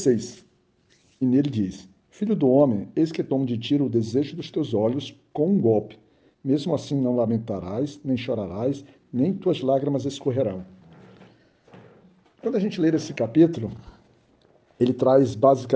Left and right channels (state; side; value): identical; both; correlation 1.00